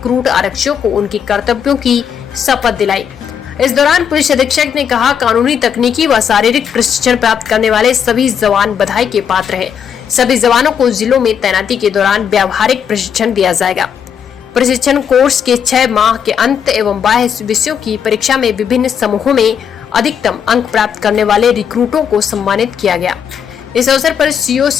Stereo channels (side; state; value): right; quieter; 7.8 dB